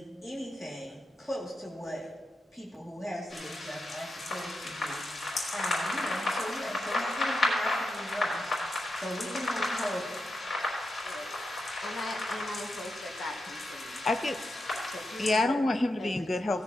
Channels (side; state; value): both; normal; correlation 0.87